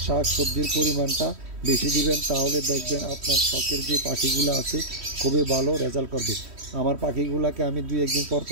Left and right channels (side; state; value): left; late; 3.1 ms